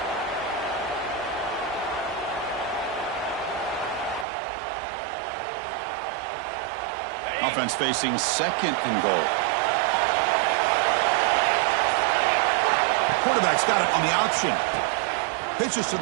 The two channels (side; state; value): left; drops out; at 4.2 s